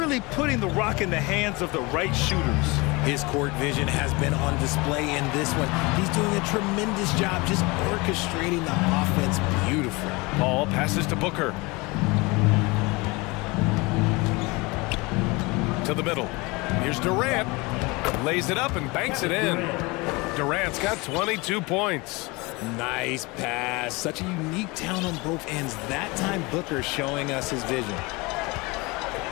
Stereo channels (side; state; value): right; quieter; 25.1 dB